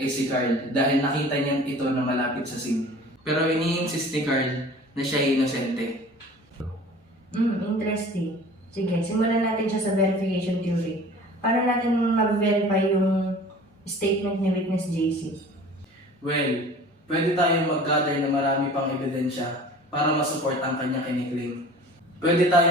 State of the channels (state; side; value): normal; both; correlation 0.44